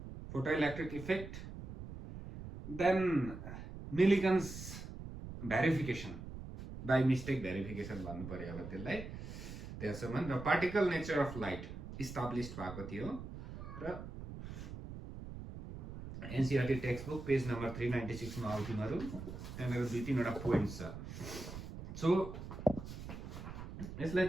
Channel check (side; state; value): right; noise; rumble, 10 dB below the sound